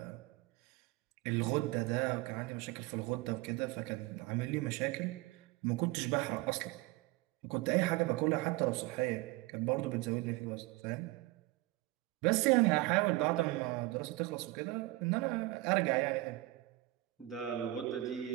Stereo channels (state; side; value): quieter; left; 19.5 dB